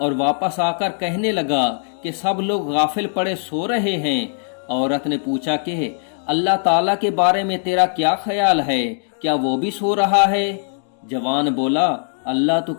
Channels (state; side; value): silent; right; digital silence